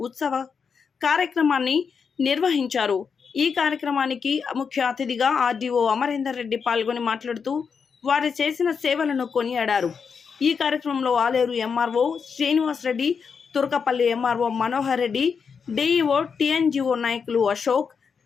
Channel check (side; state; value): right; quieter; 6.0 dB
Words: ఉత్సవ కార్యక్రమాన్ని నిర్వహించారు. ఈ కార్యక్రమానికి ముఖ్య అతిథిగా ఆర్డీఓ అమరేందర్ రెడ్డి పాల్గొని మాట్లాడుతూ వారు చేసిన సేవలను కొనియాడారు. ఈ కార్యక్రమంలో Aleru MRO Srinivas Reddy, Turkapalli MRO Manohar Reddy, DEO TNGO నాయకులు Ashok,